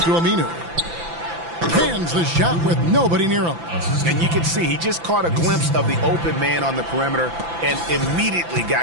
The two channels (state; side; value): late; left; 5.9 ms